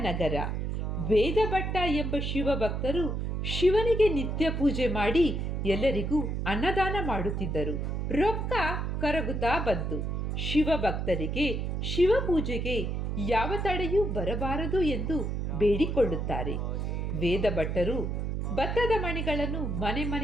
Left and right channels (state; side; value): noise; right; hum, 1 dB below the sound